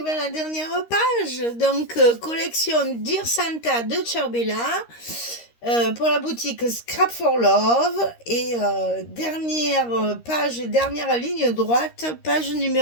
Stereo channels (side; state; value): right; late; 13 ms